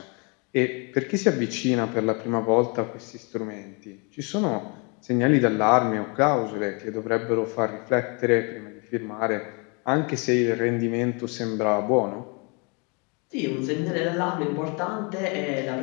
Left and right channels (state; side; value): quieter; right; 32.4 dB